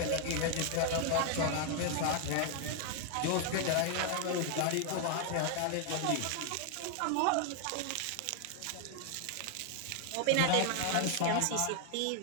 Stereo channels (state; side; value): different; both; correlation 0.00